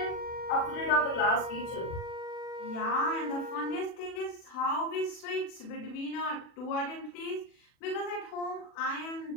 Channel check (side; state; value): right; late; 40 ms